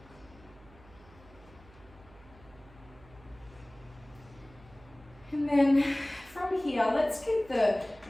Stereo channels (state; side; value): noise; right; hum, 24 dB below the sound